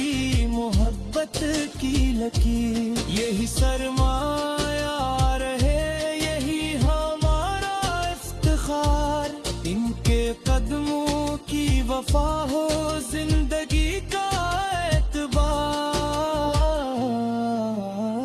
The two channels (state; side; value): identical; both; correlation 1.00